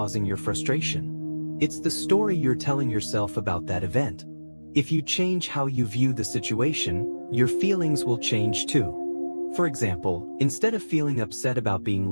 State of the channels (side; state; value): both; inverted; correlation -1.00